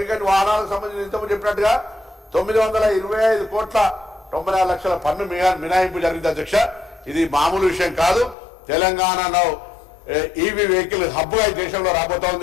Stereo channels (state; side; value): drops out; right; at 8.3 s